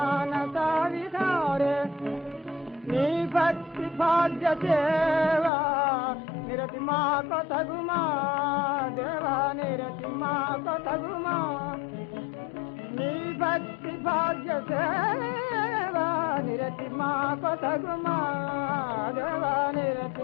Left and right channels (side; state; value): right; drops out; at 5.5 s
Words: విహారే నీ భక్తి భాగ్య సేవా నిరతి మా కొతగుమా దేవా నిరతి మా కొతగుమా నీ భక్తి భాగ్య సేవా నిరతి మా కొతగుమా దేవా